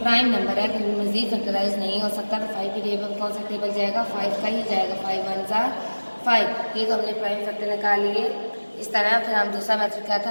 नंबर है, क्योंकि मजीद फैक्टराइज नहीं हो सकता। तो 5 के टेबल कौन सा टेबल जाएगा 5 का ही जाएगा, 5 1 ज़ा 5। ये तो हमने प्राइम फैक्टर निकाल लिए। इस तरह फिर हम दूसरा मेथड क्या था,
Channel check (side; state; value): both; inverted; correlation -1.00